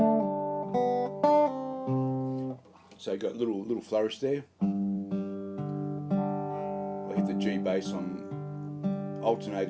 So you've got little flourish there. I hit the G bass. I'm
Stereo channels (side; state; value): both; identical; correlation 1.00